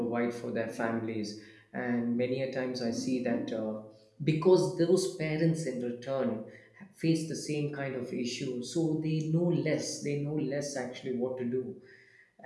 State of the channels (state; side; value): identical; both; correlation 1.00